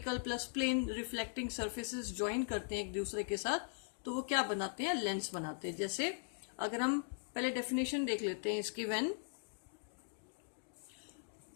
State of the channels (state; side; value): silent; right; digital silence